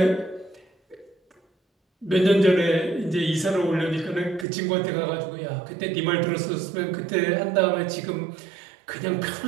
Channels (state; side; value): drops out; left; at 4.5 s